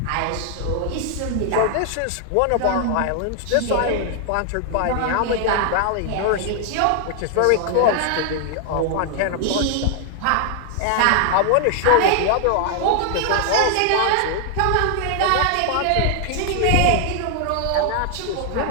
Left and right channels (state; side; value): different; both; correlation 0.00